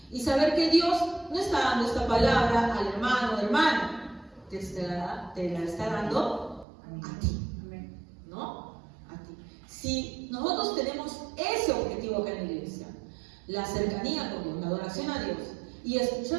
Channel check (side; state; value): left; drops out; at 6.7 s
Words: Y saber que Dios no está dando esta palabra al hermano, hermana, te la está dando a ti, ¿no? Si nosotros tenemos ese objetivo acá en la iglesia, la cercanía con Dios, la adoración a Dios, y